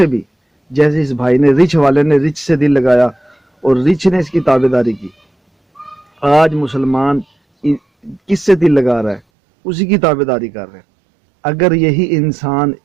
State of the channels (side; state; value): left; drops out; at 9.2 s